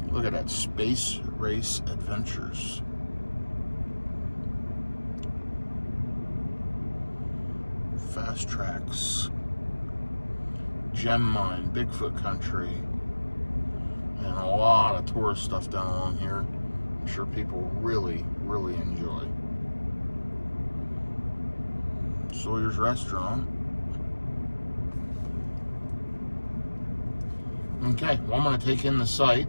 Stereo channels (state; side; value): inverted; both; correlation -1.00